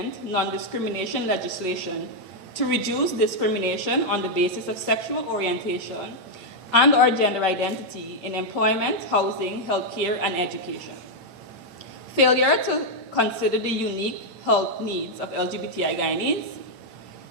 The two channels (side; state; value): left; late; 8.9 ms